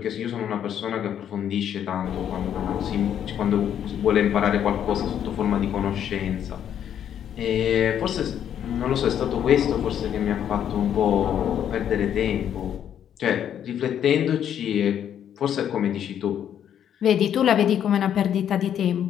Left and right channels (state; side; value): quieter; right; 9.6 dB